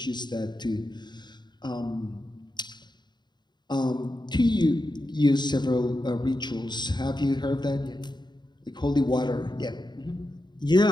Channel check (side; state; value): right; late; 0.21 ms